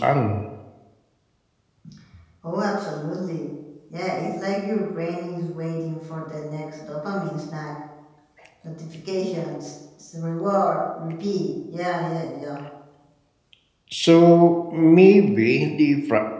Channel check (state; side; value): identical; both; correlation 1.00